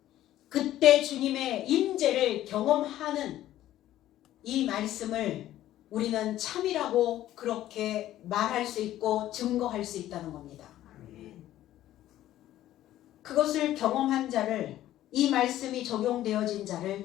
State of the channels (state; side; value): quieter; right; 13.5 dB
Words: 그때 주님의 임재를 경험하는 이 말씀을 우리는 참이라고 그렇게 말할 수 있고 증거할 수 있다는 겁니다. 그것을 경험한 자를, 이 말씀이 적용되어진 자를